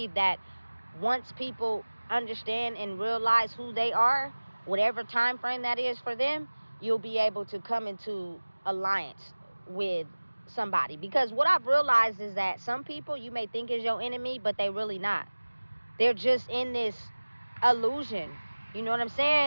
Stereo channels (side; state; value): both; inverted; correlation -1.00